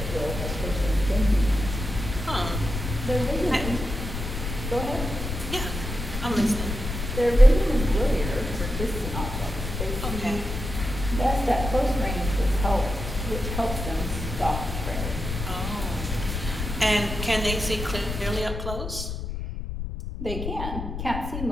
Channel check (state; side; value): noise; left; rumble, 5 dB below the sound